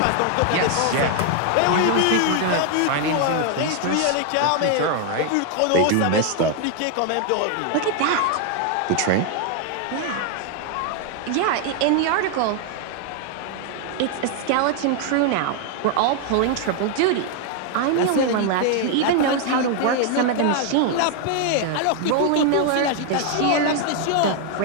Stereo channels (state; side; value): different; both; correlation 0.00